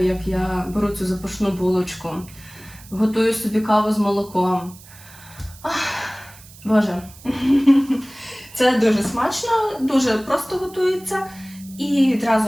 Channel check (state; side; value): noise; right; hiss, 21 dB below the sound